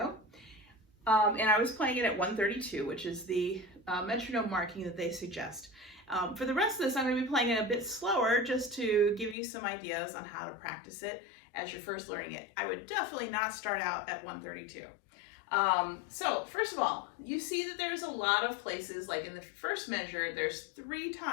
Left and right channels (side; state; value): right; drops out; at 9.3 s